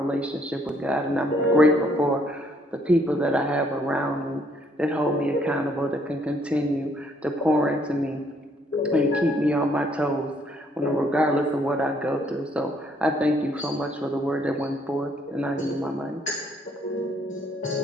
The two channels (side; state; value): both; normal; correlation 0.67